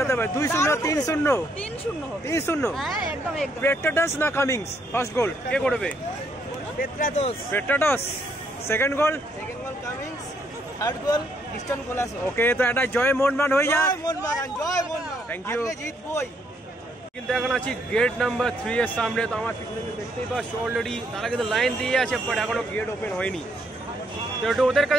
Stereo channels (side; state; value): both; normal; correlation 0.72